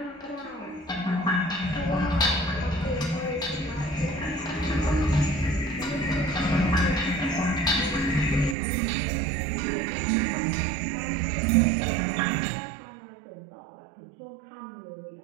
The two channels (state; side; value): drops out; left; at 8.6 s